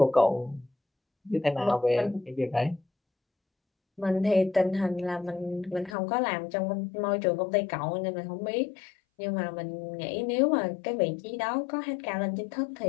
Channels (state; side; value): drops out; right; at 6.0 s